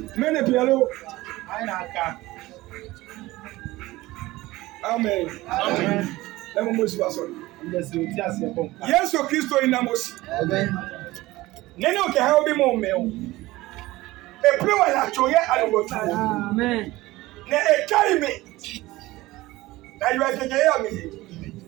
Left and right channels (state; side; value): quieter; left; 18.6 dB